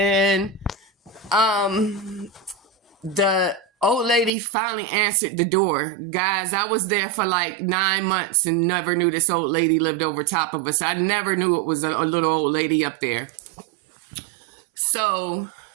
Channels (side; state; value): left; drops out; at 4.3 s